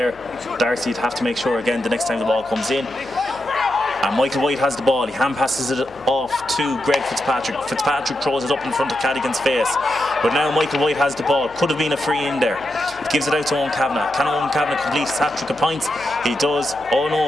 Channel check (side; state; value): left; noise; hum, 24 dB below the sound